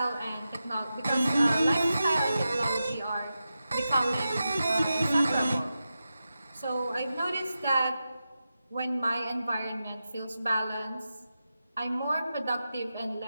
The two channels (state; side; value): inverted; both; correlation -0.91